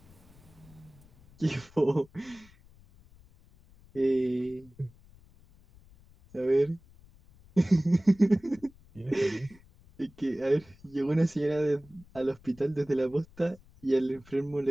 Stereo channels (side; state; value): left; noise; rumble, 26 dB below the sound